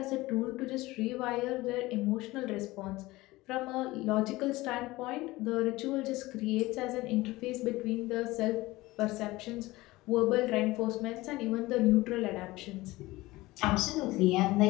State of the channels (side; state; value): right; quieter; 19.5 dB